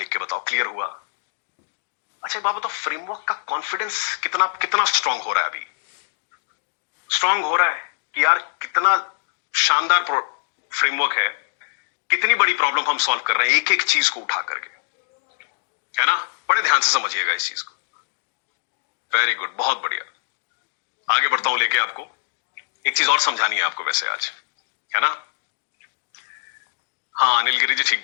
के बताओ क्लियर हुआ? अच्छा बाबा, तो फ्रेमवर्क का कॉन्फिडेंस कितना कितना स्ट्रांग हो रहा है? अभी स्ट्रांग हो रहा है कि यार कितना शानदार फ्रेमवर्क है, कितनी बड़ी प्रॉब्लम हम सॉल्व कर रहे हैं एक एक चीज को उठा करके, है ना? बड़े ध्यान से समझिएगा इस चीज को। वेरी गुड, बहुत बढ़िया। आगे बढ़ता हूं लेके आपको। एक चीज और समझानी है आपको वैसे आज, है ना? हाँ अनिल गिरी जी, ठीक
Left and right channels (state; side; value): silent; right; digital silence